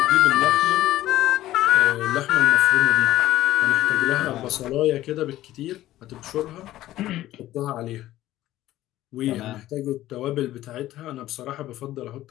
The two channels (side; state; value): right; quieter; 14.7 dB